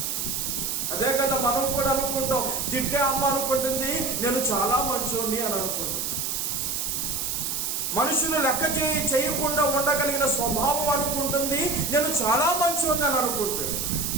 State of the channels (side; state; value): right; noise; hiss, 1 dB below the sound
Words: అదే కదా మనం కూడా అనుకుంటాం. తిట్టే అమ్మ అనుకుంటుంది నేను చాలా మంచోని అని అనుకుంటాం. మనుషులు లెక్క చేయకుండా ఉండగలిగిన స్వభావం అనుకుంటుంది నేను చాలా మంచోని అని అనుకుంటాడు.